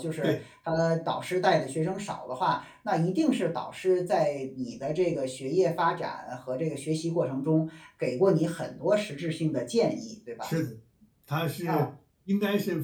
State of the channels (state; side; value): identical; both; correlation 1.00